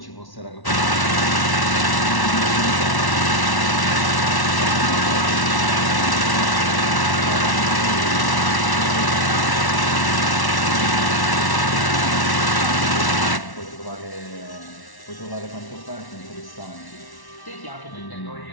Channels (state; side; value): late; right; 1.1 ms